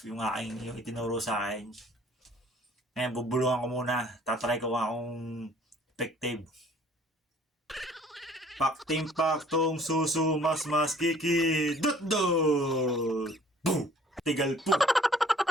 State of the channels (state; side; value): normal; both; correlation 0.55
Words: yung itinuro sa akin. Ngayon bubulungan ko muna, tatry ko akong effective. Pakting paktong susu mas kiki dut dut boom tigal po.